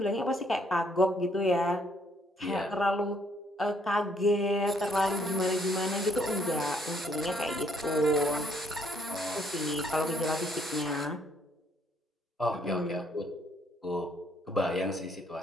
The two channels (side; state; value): both; normal; correlation 0.68